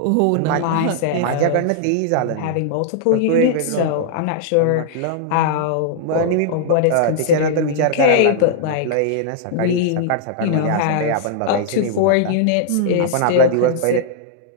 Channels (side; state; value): both; different; correlation -0.01